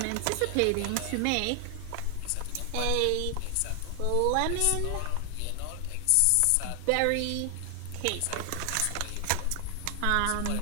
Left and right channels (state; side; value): different; both; correlation 0.00